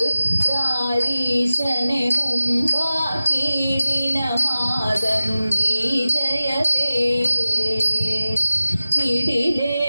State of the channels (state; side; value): inverted; both; correlation -0.95